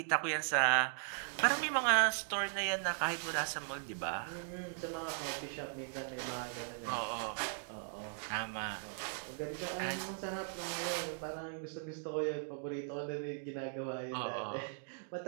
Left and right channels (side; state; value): left; silent; digital silence